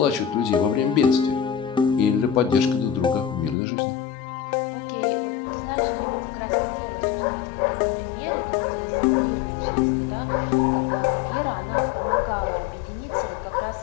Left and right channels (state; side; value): drops out; right; at 3.6 s